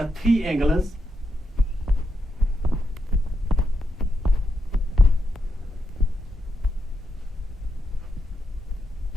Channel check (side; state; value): both; normal; correlation 0.83